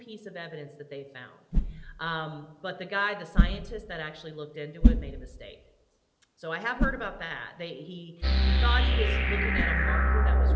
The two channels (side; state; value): both; identical; correlation 1.00